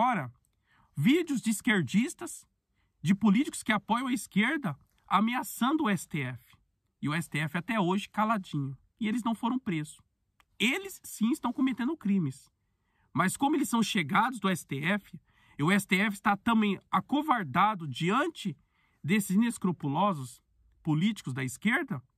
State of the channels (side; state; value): both; identical; correlation 1.00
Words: vídeos de esquerdistas, de políticos que apoiam a esquerda, ameaçando o STF. E o STF até hoje caladinho. E eles não foram presos. Eles sim estão cometendo crimes. Mas como eles são chegados do STF, e o STF está também acovardado diante desses inescrupulosos políticos da esquerda,